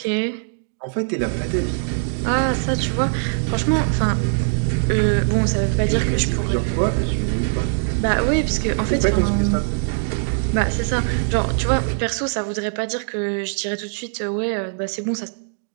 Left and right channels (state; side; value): silent; left; digital silence